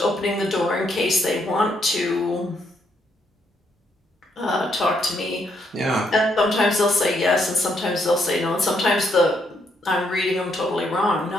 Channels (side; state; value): both; normal; correlation 0.74